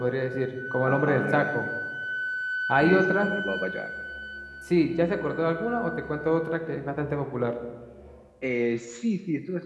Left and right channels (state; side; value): identical; both; correlation 1.00